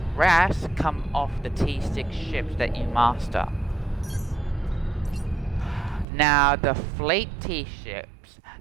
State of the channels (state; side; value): drops out; left; at 6.1 s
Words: rest come off the T6 ships that you master. Now the fleet T ships,